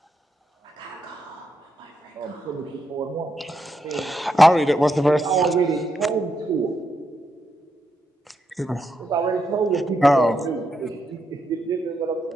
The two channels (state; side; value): normal; both; correlation 0.82